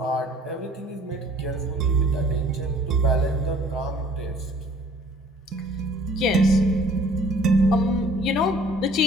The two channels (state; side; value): normal; both; correlation 0.54